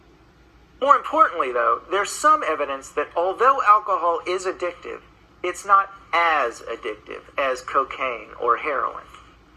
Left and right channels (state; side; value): identical; both; correlation 1.00